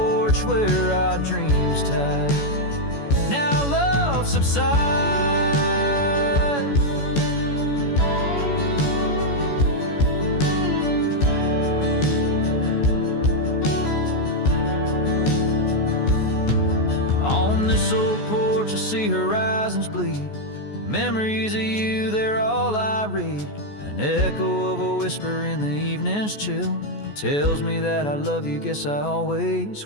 where our dreams tied. Now love subsides. On this old porch I see horizons bleed. Memories of you, they're all I read. An echo of a whisper in the evening's chill tells me that I love you, guess I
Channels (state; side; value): late; right; 14 ms